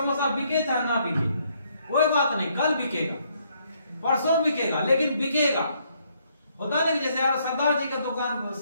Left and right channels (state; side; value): inverted; both; correlation -0.71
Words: बिके चाहे ना बिके, कोई बात नहीं, कल बिकेगा, परसों बिकेगा, लेकिन बिकेगा। होता नहीं, जैसे यार सरदार जी का दुकान